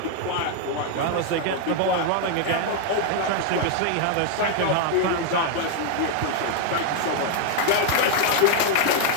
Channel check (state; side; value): different; both; correlation 0.00